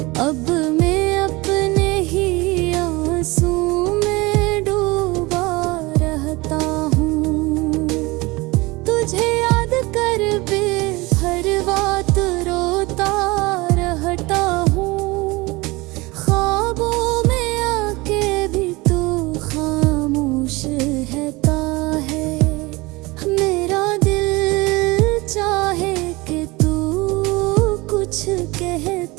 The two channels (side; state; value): left; quieter; 23.0 dB